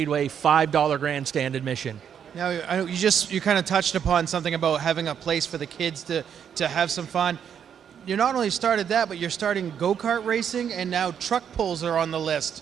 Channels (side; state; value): left; quieter; 8.2 dB